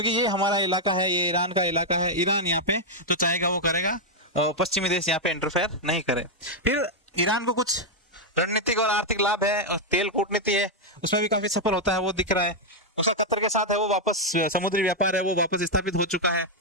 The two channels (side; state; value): both; normal; correlation -0.01